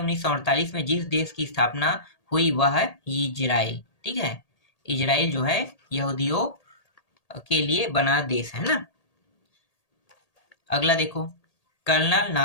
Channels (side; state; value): right; late; 1.8 ms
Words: में जिस देश की स्थापना हुई वह है इजराइल। ठीक है, इजराइल जो है यहूदियों के लिए बना देश है ना। अगला देखो, कर्नल